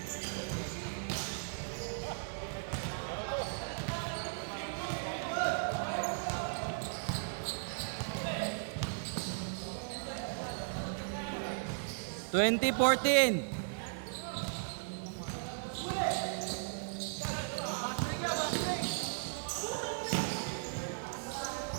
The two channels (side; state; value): left; silent; 53 dB below the other